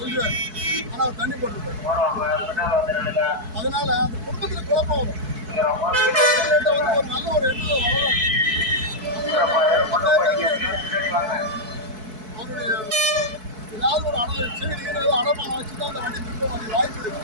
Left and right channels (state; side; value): late; left; 4.6 ms